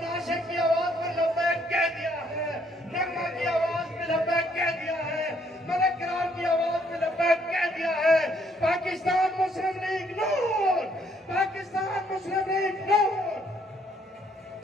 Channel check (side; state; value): both; normal; correlation 0.68